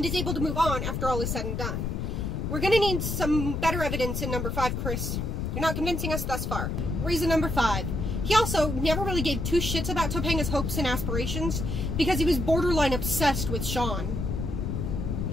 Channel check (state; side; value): noise; left; rumble, 2 dB below the sound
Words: is able to move on after all is said and done. We're gonna need some better evidence in number 5, Chris. You're not convincing us thus far. Reason number 5. He also never really gave two shits about Topanga's hopes and aspirations because he was borderline obsessed with Sean.